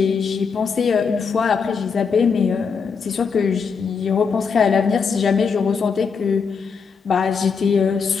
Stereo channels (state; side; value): quieter; right; 5.7 dB